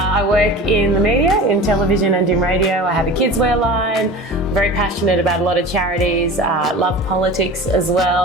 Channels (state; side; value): normal; both; correlation 0.35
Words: work in the media, in television and in radio. I have a kids wear line. I'm very passionate about a lot of charities. Love politics as